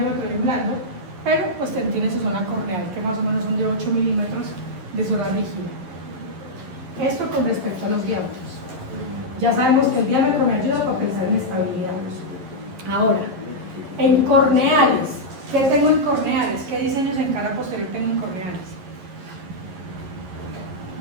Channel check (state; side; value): late; left; 11 ms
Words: de un blando, pero pues tiene su zona corneal, que más o menos son de 8 milímetros de zona rígida. Esto con respecto a los diámetros. Ya sabemos que el diámetro me ayuda para pensar en estabilidad. Ahora, en corneales, ¿qué tengo en corneales? ¿Qué diseños en cara posterior tengo en corneales?